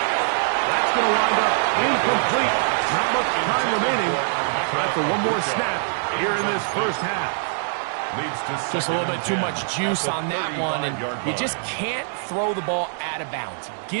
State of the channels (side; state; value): left; silent; digital silence